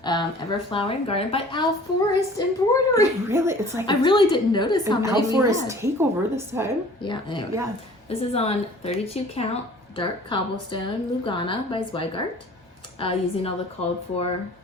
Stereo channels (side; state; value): both; normal; correlation 0.49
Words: Everflowering Garden by Al Forest Embroidery. Really? It's like I really didn't notice how many Al we Forest had. takeover this time. Yeah. Anyway. Yeah. This is on 32 count dark cobblestone Lugana by Zweigart, using all the called for